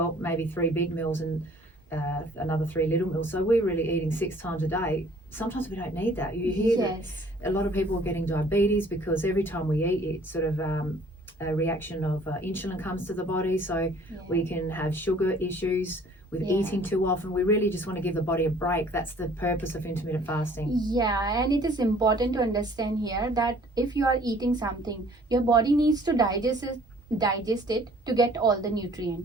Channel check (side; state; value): both; normal; correlation 0.55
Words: maybe 3 big meals and another 3 little meals. So we're really eating 6 times a day. Sometimes we don't need that. You hear that a lot of people are getting diabetes because every time we eat, it's sort of a reaction of insulin comes to the body. So we can have sugar issues with eating too often. We really just want to give the body a break. That's the purpose of intermittent fasting. Yeah, and it is important to understand here that if you are eating something, your body needs to digest it to get all the